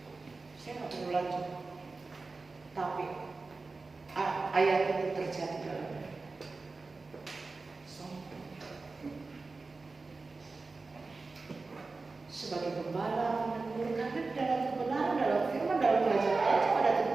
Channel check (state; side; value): quieter; left; 3.8 dB